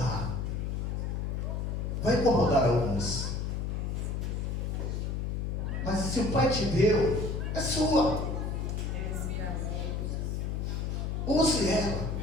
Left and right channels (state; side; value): noise; left; hum, 1 dB below the sound